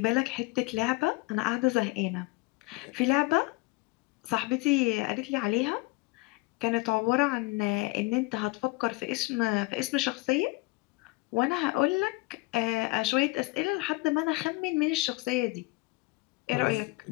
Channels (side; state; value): right; quieter; 23.7 dB